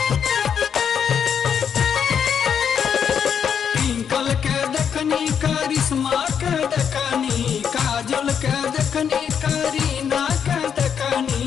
करिश्मा के देखनी काजल के देखनी करीना के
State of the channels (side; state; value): right; quieter; 7.6 dB